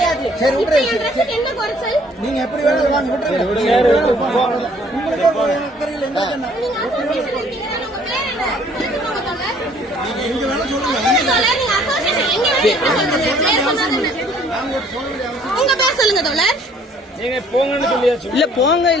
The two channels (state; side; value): normal; both; correlation 0.59